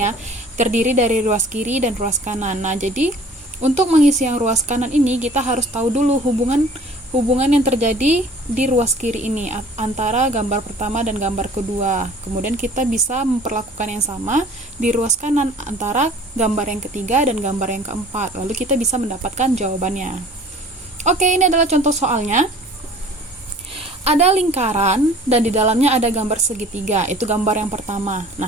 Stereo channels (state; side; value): normal; both; correlation 0.49